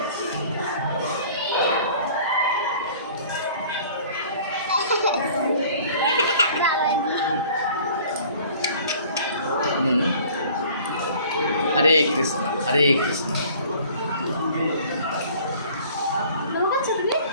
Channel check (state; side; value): inverted; both; correlation -0.50